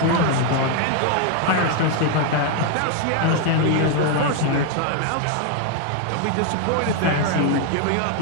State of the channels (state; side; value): different; both; correlation 0.01